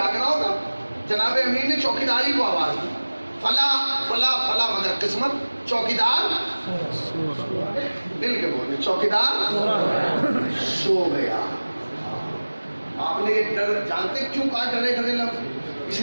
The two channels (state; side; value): inverted; both; correlation -1.00